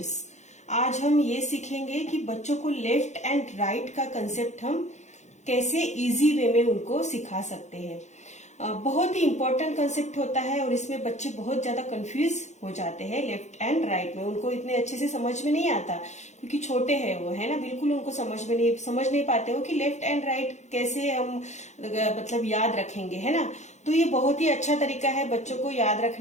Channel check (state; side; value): late; right; 0.33 ms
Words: आज हम ये सीखेंगे कि बच्चों को left and right का concept हम कैसे इजी वे में उनको सिखा सकते हैं। बहुत ही इम्पोर्टेंट कंसेप्ट होता है और इसमें बच्चे बहुत ज्यादा कंफ्यूज हो जाते हैं लेफ्ट एंड राइट में। उनको इतने अच्छे से समझ में नहीं आता क्योंकि छोटे हैं वो, है ना, बिल्कुल उनको समझ नहीं पाते हो कि लेफ्ट एंड राइट कैसे हम मतलब याद रखेंगे, है ना। तो ये बहुत ही अच्छा तरीका है बच्चों को याद